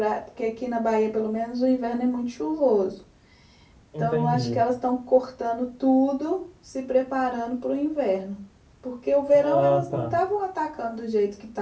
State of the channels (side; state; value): both; identical; correlation 1.00